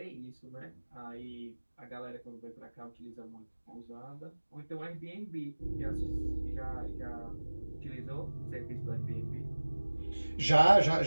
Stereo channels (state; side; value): inverted; both; correlation -1.00